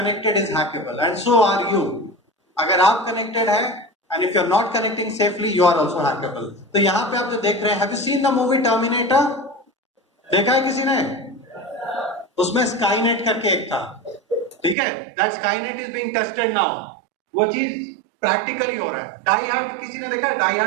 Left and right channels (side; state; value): left; drops out; at 14.8 s